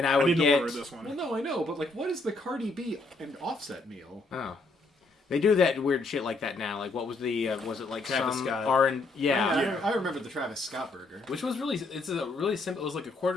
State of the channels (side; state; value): right; quieter; 3.2 dB